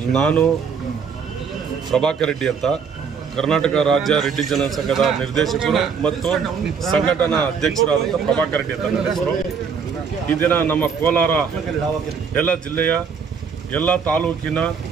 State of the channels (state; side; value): quieter; left; 6.2 dB